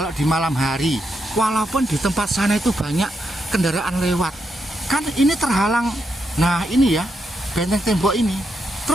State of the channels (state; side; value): normal; both; correlation 0.82